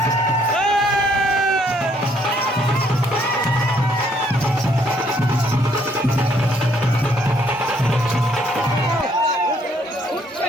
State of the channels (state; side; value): normal; both; correlation 0.67